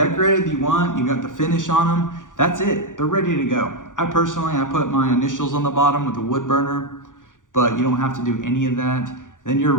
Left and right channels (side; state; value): right; late; 0.87 ms